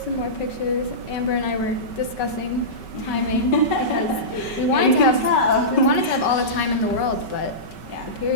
more pictures. Amber and I were discussing timing because we wanted to have all the time in the world, but Yeah. the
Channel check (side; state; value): right; late; 5.3 ms